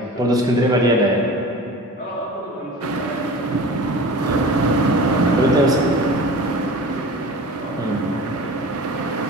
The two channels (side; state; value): both; normal; correlation 0.37